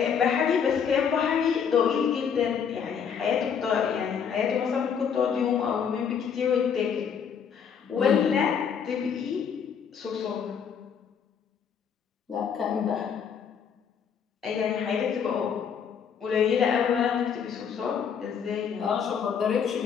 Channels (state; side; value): quieter; right; 7.3 dB